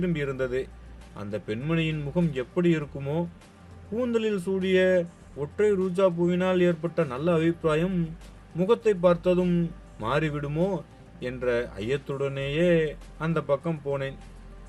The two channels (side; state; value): both; identical; correlation 1.00